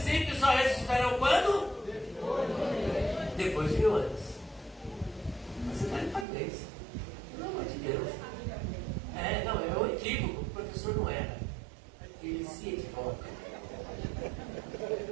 ímpios só ressuscitarão quando? Depois de 1000 anos. Você está de parabéns. Pelo amor de Deus. Não, é um equívoco. O professor não era. Ele se equivoca.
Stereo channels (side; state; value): left; drops out; at 6.2 s